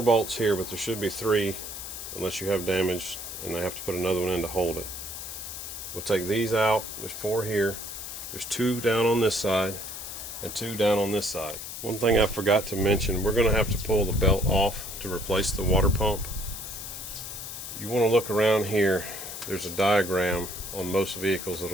bolts here, but there should be 3 unless you have damage and they have to put another one in to hold it. We'll take these out. There's 4 here. There's 2 down on this side and 2 down on this side. One thing I forgot to mention, we're going to have to pull the belt off to replace the water pump. You want to look around here. There's a diagram on most vehicles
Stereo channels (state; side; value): noise; left; hiss, 8 dB below the sound